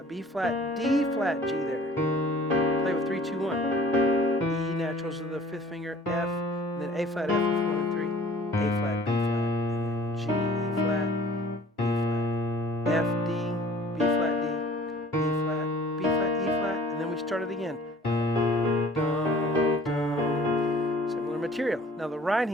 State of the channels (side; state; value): both; normal; correlation 0.51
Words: B flat, D flat, G there. Play with 3, 2, 1. E naturals of the 5th finger, F, and then A flat, F with 1 and 3, A flat, B flat, and then G, E flat. F, D, B flat, D, E flat, B flat, E flat, and then we start it again. Dum, dum. Similar material. Now the right